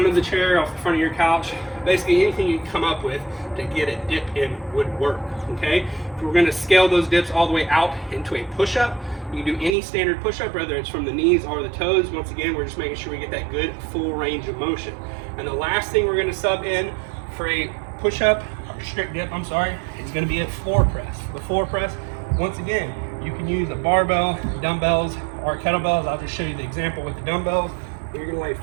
of the chair, off the front of your couch. Basically anything you can come up with to get a dip in would work, okay? If we're gonna scale those dips all the way out into a push-up, you can do any standard push-up, whether it's from the knees or the toes. Once again, we're just making sure we get that good full range of motion. And the last thing we're gonna sub in for a push-up, or strict dip, I'm sorry, is gonna be a floor press. The floor press, once again, you can use a barbell, dumbbells, or kettlebells. I'll just show you the example with the dumbbells. You're gonna lay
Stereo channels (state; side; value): drops out; left; at 9.8 s